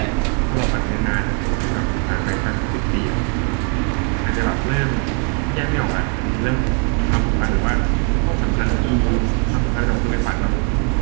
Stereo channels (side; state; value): left; quieter; 38.3 dB